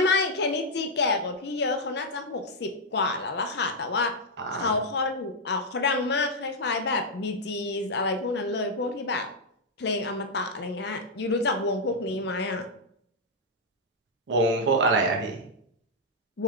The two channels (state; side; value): normal; both; correlation -0.03